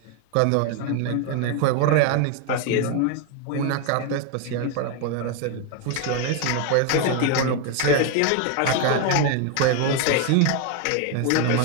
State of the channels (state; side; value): different; both; correlation 0.01